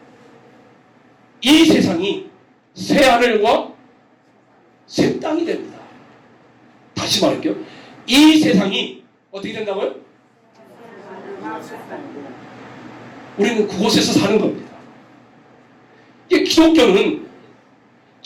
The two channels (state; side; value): identical; both; correlation 1.00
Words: 이 세상이 새 하늘과 새 땅이 됩니다. 다시 말할게요. 이 세상이 어떻게 된다고요? 우리는 그곳에서 사는 겁니다. 이 기독교는